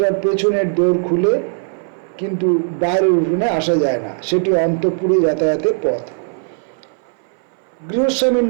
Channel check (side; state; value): left; silent; 59 dB below the other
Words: পেছনের দোর খুলে, কিন্তু বাইরের উঠোনে আসা যায় না, সেটি অন্তঃপুরে যাতায়াতের পথ। গৃহস্বামীর